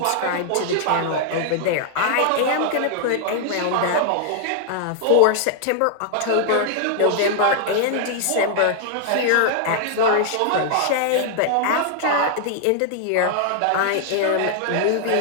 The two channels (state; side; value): different; both; correlation 0.00